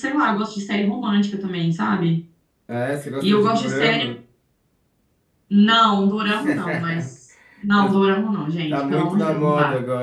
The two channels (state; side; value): identical; both; correlation 1.00